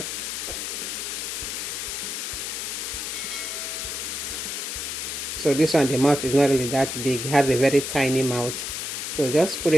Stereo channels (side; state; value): left; noise; hiss, 4 dB below the sound